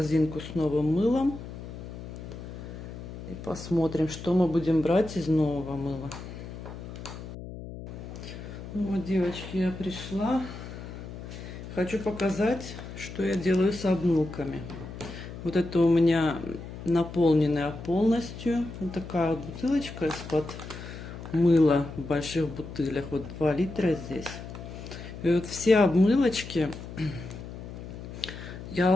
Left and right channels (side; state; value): left; noise; hum, 11 dB below the sound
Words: с новым мылом. И посмотрим, что мы будем брать из нового мыла. Ну вот, девочки, я пришла. Хочу показать, что я делаю с обмылками. Вот это у меня наполненная полностью. Вот такая вот бутылочка из-под мыла в больших бутылях. Вот 2 литра здесь. И вот все обмылочки